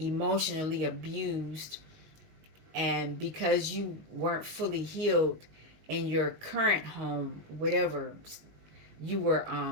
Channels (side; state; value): left; late; 19 ms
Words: abused, and because you weren't fully healed in your current home, whatever, you were